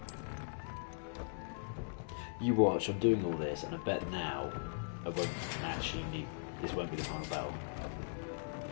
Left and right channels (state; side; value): silent; right; digital silence